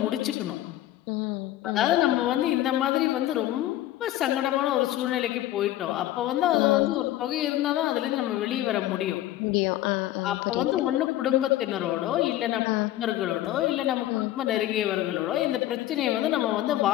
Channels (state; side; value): quieter; right; 14.3 dB